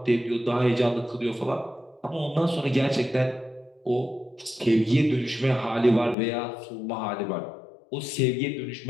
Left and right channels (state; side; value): drops out; right; at 6.2 s